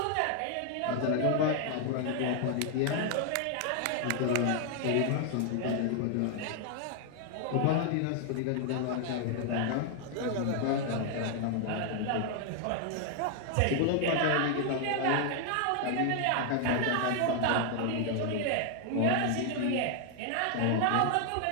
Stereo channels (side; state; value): both; different; correlation 0.00